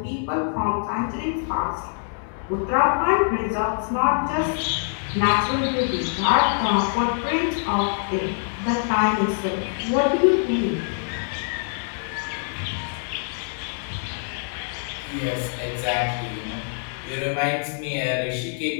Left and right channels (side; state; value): right; silent; digital silence